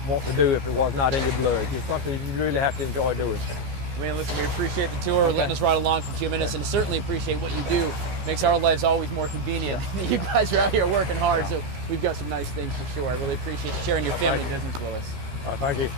want to do if it was not in your blood. It's something you really have to enjoy doing. Man, listen, we appreciate the tour, letting us ride along for a few minutes, and certainly appreciate what you do. Makes our lives always more convenient. You guys are out here working hard, so we've got some nice things for sure. I really appreciate you sharing your family business with us. All right, thank you.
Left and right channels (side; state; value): left; late; 15 ms